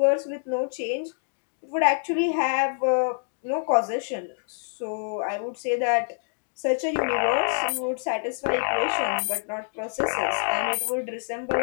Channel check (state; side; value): silent; right; digital silence